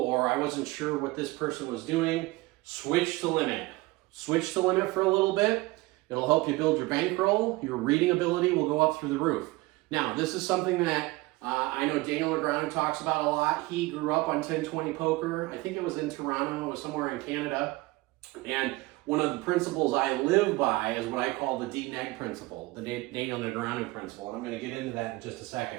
I wasn't sure what this person was doing, switch to Limit. Switch to Limit for a little bit. It'll help you build your bankroll. Your reading ability will go up through the roof. Now, this is something that I know Daniel LeGrand talks about a lot. He grew up on 10-20 poker. I think it was in Toronto, it was somewhere in Canada. And one of the principles I live by is what I call the DNEG principle, the Daniel LeGrand principle. And I'm going to get into that in just a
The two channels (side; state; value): left; quieter; 21.3 dB